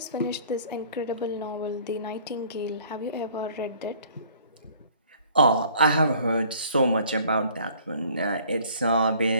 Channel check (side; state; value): both; inverted; correlation -0.55